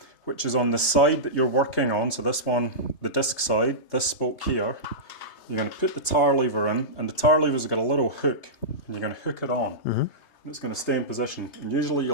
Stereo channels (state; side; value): late; right; 3.3 ms